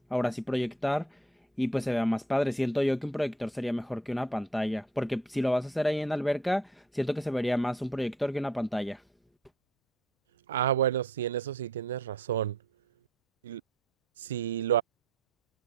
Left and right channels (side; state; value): both; normal; correlation 0.60